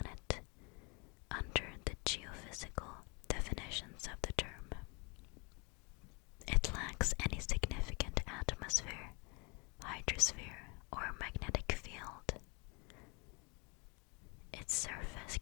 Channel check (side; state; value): right; quieter; 30.2 dB